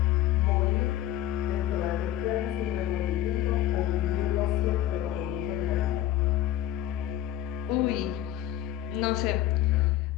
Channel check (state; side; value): quieter; right; 12.7 dB